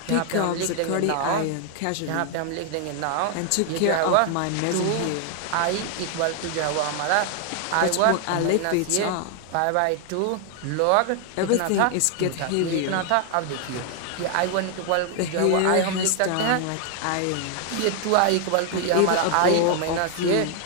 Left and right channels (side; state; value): both; different; correlation 0.00